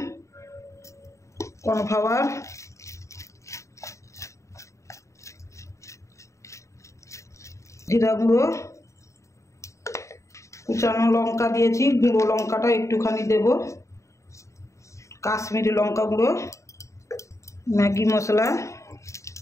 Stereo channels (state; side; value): late; right; 0.15 ms